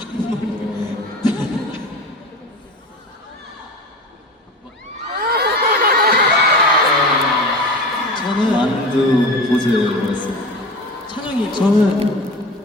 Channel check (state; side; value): normal; both; correlation 0.32